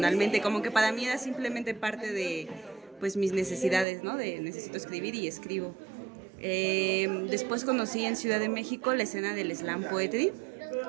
como que para mí era simplemente parte de pues mis necesidades, ¿no? De necesito escribir y escribo. Después conocí en Ciudad de México la escena del slam poetry,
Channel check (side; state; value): left; drops out; at 3.9 s